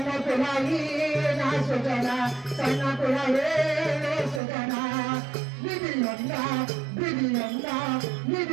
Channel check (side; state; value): left; drops out; at 4.4 s